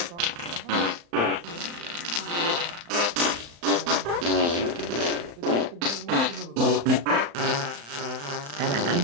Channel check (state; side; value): late; left; 35 ms